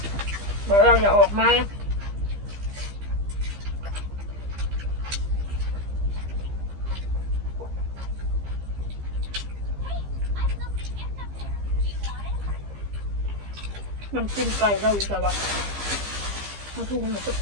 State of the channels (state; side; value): late; left; 15 ms